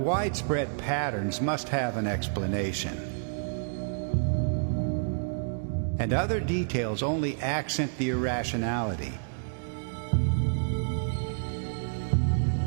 patterns must have an explanation. And other details only accent the irrationality.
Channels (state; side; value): silent; left; digital silence